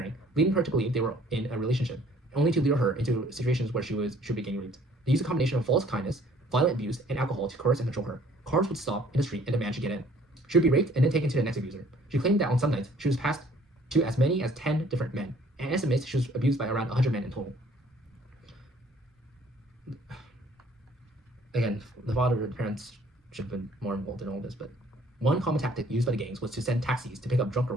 leading her to believe they were in a relationship, only to lure her into situations where she would be getting raped. They used a combination of false kindness, violent abuse, and alcohol to coerce and control her. Cars would stop in the street and demand she get in. She would be raped and then taken to the next abuser. She claimed that on some nights, she was passed to as many as 10 different men, and estimates she was abused by around 100 men in total. Again, the father and parents should have been more involved in all this, but one common tactic used by the gangs was to send taxis to pick up drunk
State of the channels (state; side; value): normal; both; correlation 0.58